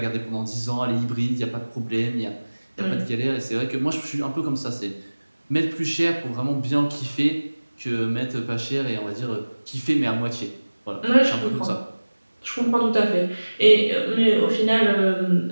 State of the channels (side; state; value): both; inverted; correlation -1.00